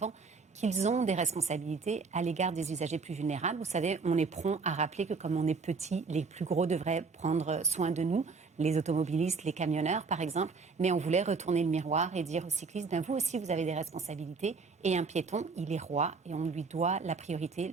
qu'ils ont des responsabilités à l'égard des usagers plus vulnérables. Vous savez, on est prompt à rappeler que comme on est petit, les plus gros devraient prendre soin de nous, les automobilistes, les camionneurs par exemple, mais on voulait retourner le miroir et dire aux cyclistes, ben vous aussi vous avez des responsabilités et un piéton, il est roi et on lui doit la priorité,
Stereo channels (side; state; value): left; quieter; 4.7 dB